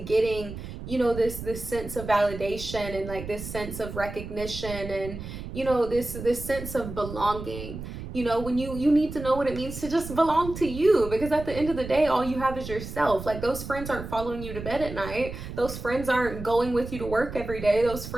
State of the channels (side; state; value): right; noise; rumble, 9 dB below the sound